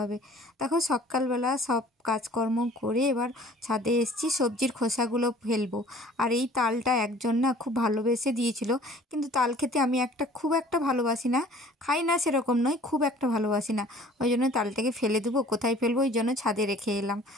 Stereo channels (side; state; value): both; normal; correlation 0.50